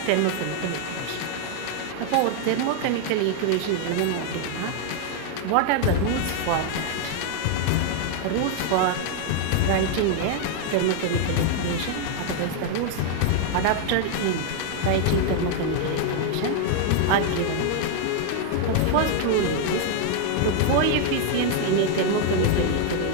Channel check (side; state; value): both; different; correlation 0.00